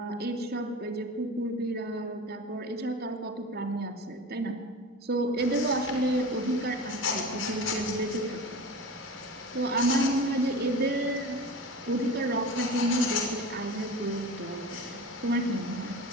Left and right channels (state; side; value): normal; both; correlation 0.33